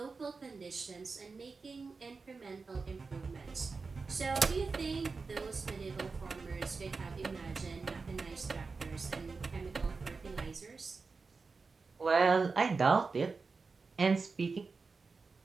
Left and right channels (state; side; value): quieter; left; 4.4 dB